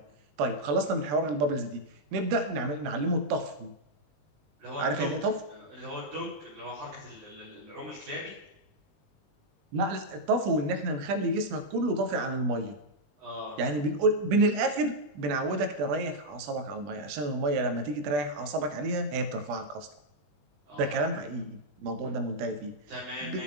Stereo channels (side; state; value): left; late; 20 ms